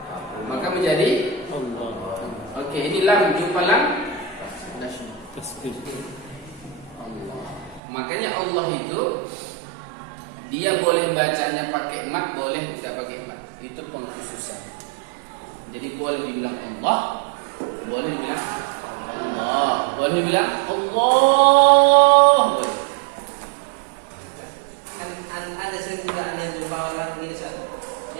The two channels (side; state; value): left; drops out; at 7.8 s